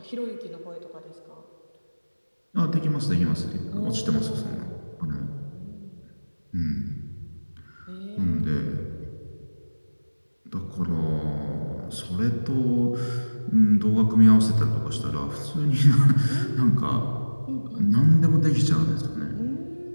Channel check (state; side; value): inverted; both; correlation -1.00